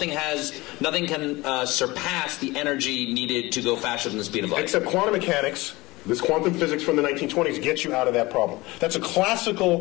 can surpass the energy needed to go faster than the speed of light. Except quantum mechanics. This quantum physics from the 1920s gets you out of that problem. That's a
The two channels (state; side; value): quieter; right; 21.3 dB